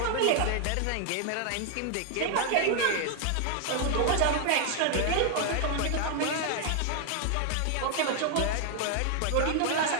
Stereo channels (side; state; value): both; different; correlation 0.00